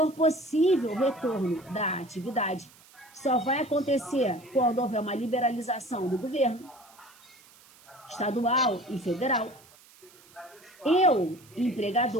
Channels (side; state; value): right; noise; hiss, 26 dB below the sound